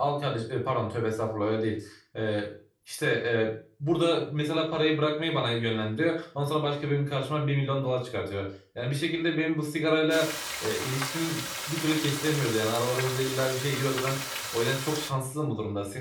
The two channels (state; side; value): identical; both; correlation 1.00